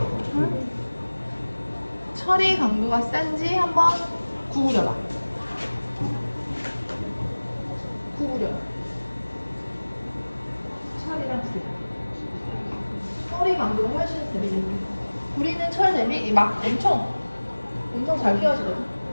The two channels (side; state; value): both; inverted; correlation -1.00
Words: 응? 철이 강도가 센지 한번 구부려봐. 철이랑 구리. 철이 강도가 훨씬 세지. 구리는 철 대비 막 엄청 잘 끼워지거든.